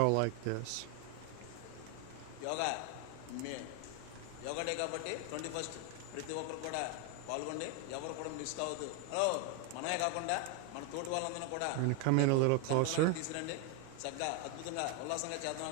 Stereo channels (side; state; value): both; different; correlation 0.01